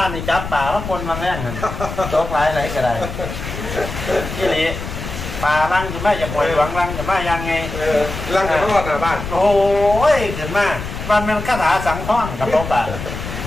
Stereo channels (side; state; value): left; noise; rumble, 8 dB below the sound